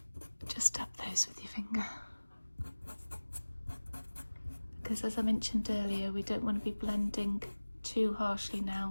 just tap those with your finger, because as I mentioned earlier, we don't want to be blending too harshly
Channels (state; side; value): inverted; both; correlation -1.00